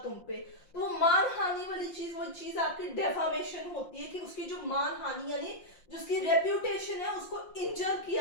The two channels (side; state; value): right; late; 5.7 ms